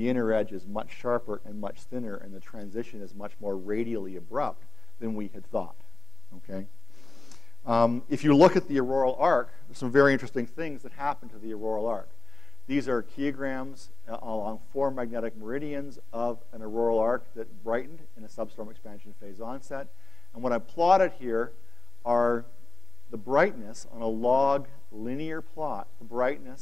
inner edge is much sharper and much thinner, and the transition is much more radially abrupt than we had thought. Okay? If you look at the auroral arc, there's some very interesting things that happen to the auroral arc. These are kilograms along 4 magnetic meridians of an auroral arc that brightened in a substorm expansion phase onset. And what I plotted here are the brightness on a log linear plot, the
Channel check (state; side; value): quieter; right; 3.6 dB